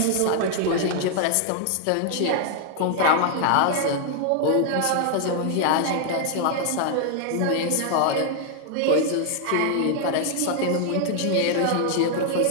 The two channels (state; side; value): different; both; correlation 0.00